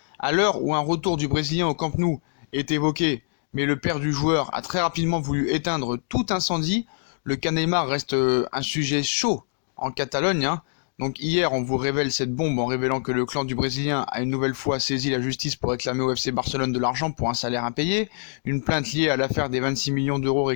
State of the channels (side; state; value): right; silent; digital silence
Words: à l'heure où un retour du Brésilien au Camp Nou est évoqué, mais le père du joueur a très rapidement voulu éteindre tout incendie. Le cas Neymar reste un sujet chaud en Catalogne, hein. Donc hier, on vous révèle cette bombe en révélant que le clan du Brésilien a une nouvelle fois saisi la justice pour réclamer au FC Barcelone de l'argent pour un salaire impayé. Une plainte liée à l'affaire des 26 millions d'euros